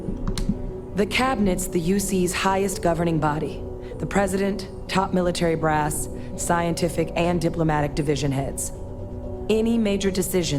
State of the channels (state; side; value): identical; both; correlation 1.00